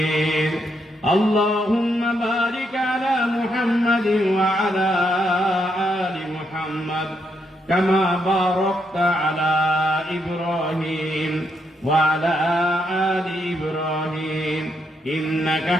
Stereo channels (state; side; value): normal; both; correlation 0.78